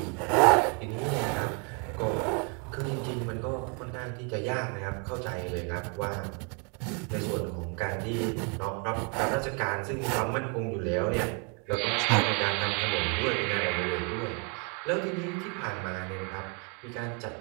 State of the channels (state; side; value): quieter; left; 36.2 dB